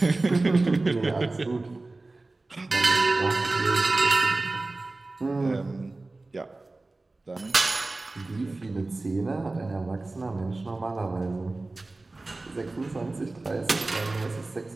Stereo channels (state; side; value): quieter; left; 3.1 dB